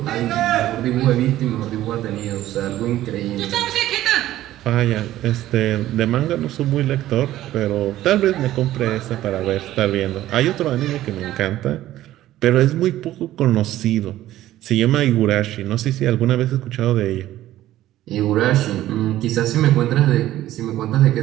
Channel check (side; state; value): left; quieter; 14.2 dB